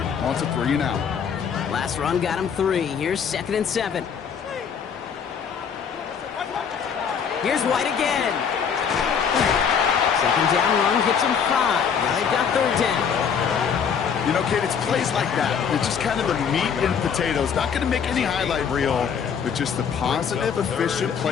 wants a 3 and out. Last run got him 3. Here's 2nd and 7. Here's White again. 2nd down run gets him 5. Now they've got 3rd down. You know, Kate, it's plays like that. It's just kind of the meat and potatoes. Not going to make any highlight reel, but just the positive, efficient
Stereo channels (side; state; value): right; quieter; 7.0 dB